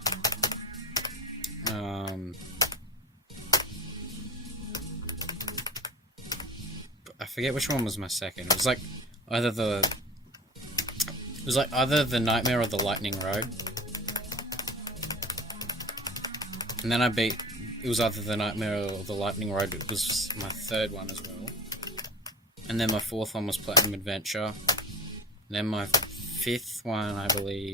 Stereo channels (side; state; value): both; normal; correlation 0.37